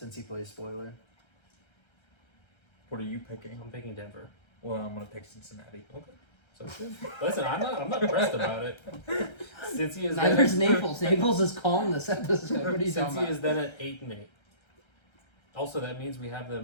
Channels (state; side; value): late; right; 1.3 ms